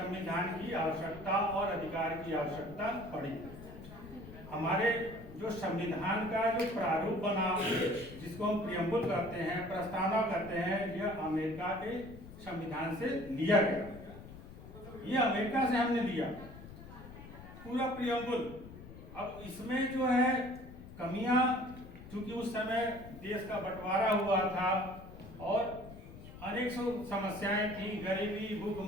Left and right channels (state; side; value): noise; left; rumble, 15 dB below the sound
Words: की आवश्यकता और अधिकार की आवश्यकता पड़ी। हमारे जो संविधान का जो प्रारूप बना, जिसको हम प्रियम्बुल करते हैं, प्रस्तावना करते हैं, यह अमेरिका के संविधान से लिया गया। ये अमेरिका से हमने लिया पूरा प्रियम्बुल। अब इसमें जो है कमियां, चूंकि उस समय देश का बंटवारा हुआ था और अनेक समस्याएं थी, गरीबी,